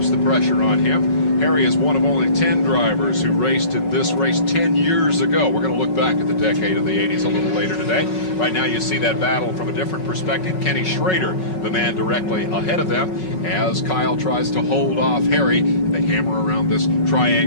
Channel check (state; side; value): late; right; 5.4 ms